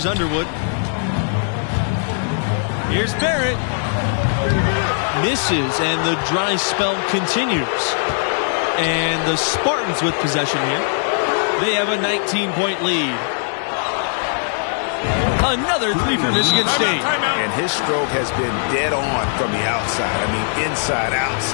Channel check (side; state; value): right; silent; digital silence